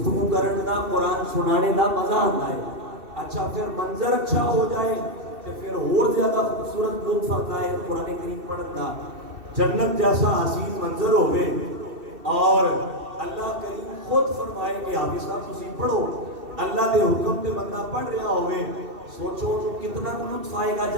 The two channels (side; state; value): left; late; 2.7 ms